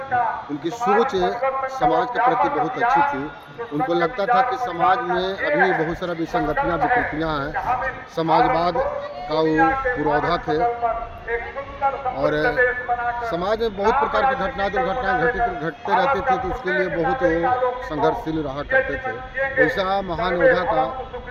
उनकी सोच समाज के प्रति बहुत अच्छी थी। उनको लगता था कि समाज में अभी बहुत सारा विसंगतियाँ विकृतियाँ हैं। समाजवाद का वो पुरोधा थे और समाज में बहुत प्रकार की दुर्घटनाएं घटते रहती थी, तो उसके लिए बहुत वो संघर्षशील रहा करते थे। ऐसा महान योद्धा का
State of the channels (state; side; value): identical; both; correlation 1.00